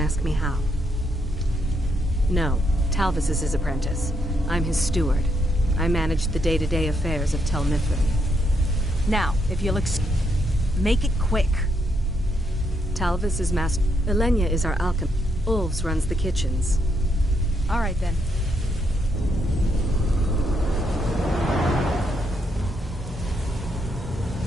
me how. No, Talvis is his apprentice. I'm his steward. I manage the day-to-day affairs of Tel Mithrin. Now, if you'll make it quick. Talvis is master. Elenia is our alchemist. Ulves runs the kitchens. All right, then.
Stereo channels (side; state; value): both; normal; correlation 0.77